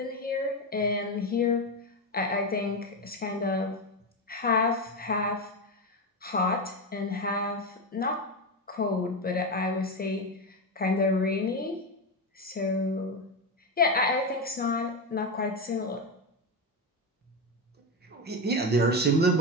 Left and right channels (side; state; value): both; normal; correlation 0.13